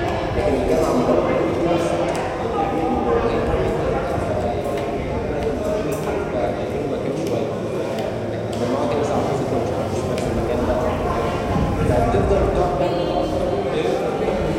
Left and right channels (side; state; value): both; identical; correlation 1.00